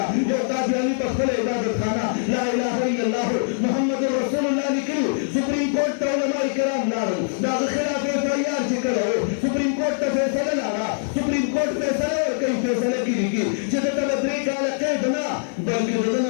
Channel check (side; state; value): right; silent; digital silence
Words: یو قادیاني په خپله عبادت خانه لا اله الا الله محمد رسول الله لیکلي سپریم کورټ ته علماء کرام لاړل د هغه خلاف FIR چې کړی و سپریم کورټ ته فیصله لاړه سپریم کورټ فیصله ورکوي فیصله کې لیکي چې دته به 3 کاله قید نه بلکې د ده نه